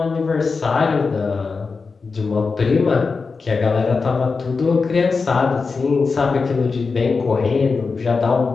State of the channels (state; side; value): quieter; right; 4.6 dB